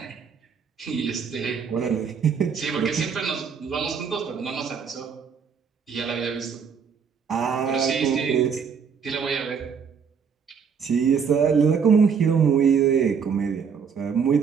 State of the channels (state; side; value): quieter; left; 6.4 dB